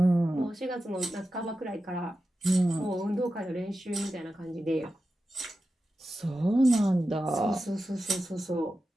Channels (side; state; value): both; normal; correlation 0.92